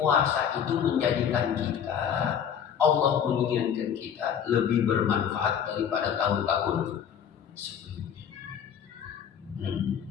itu menjadikan kita, Allah menginginkan kita lebih bermanfaat daripada tahun-tahun sebelumnya.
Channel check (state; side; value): quieter; right; 8.3 dB